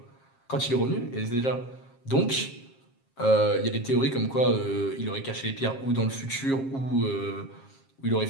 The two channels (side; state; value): right; late; 7.5 ms